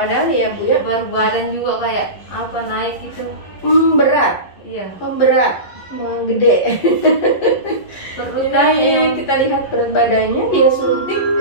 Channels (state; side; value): late; right; 11 ms